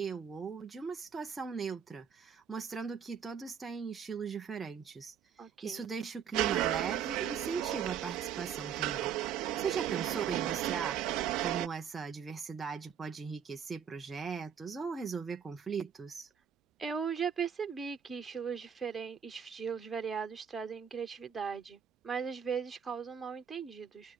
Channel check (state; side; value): quieter; left; 7.8 dB